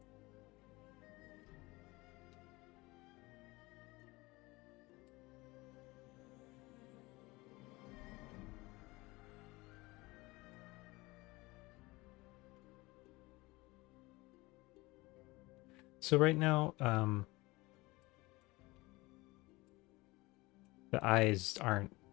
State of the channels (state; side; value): quieter; right; 22.0 dB